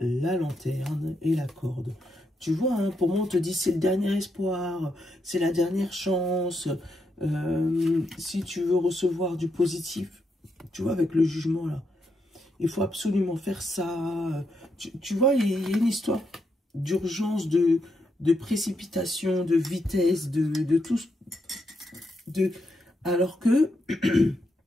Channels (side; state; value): both; normal; correlation 0.81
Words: lanterne et la corde. Tu vois, hein, pour moi, on te dit c'est le dernier espoir, c'est la dernière chance. Si tu veux recevoir du positif, tu vois, avec le jugement, là, il faut absolument faire ça. Tu vois, il y a une histoire d'urgence, de précipitation, de vitesse, de tout. Alors que